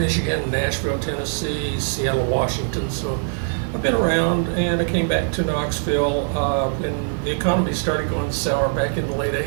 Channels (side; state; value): left; silent; 64 dB below the other